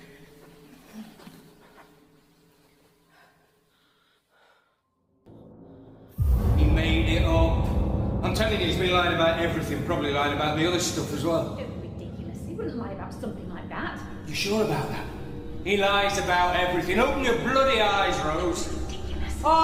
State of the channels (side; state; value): both; identical; correlation 1.00